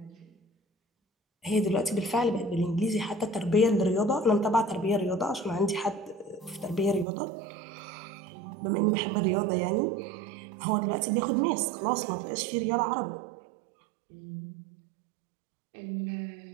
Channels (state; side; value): drops out; left; at 7.1 s